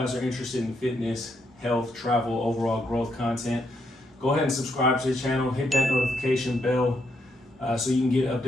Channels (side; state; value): both; normal; correlation 0.77